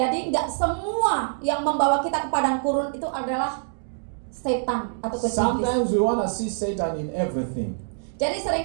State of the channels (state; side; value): silent; left; digital silence